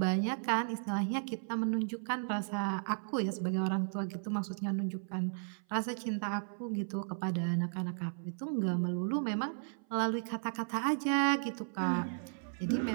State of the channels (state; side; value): silent; left; 54 dB below the other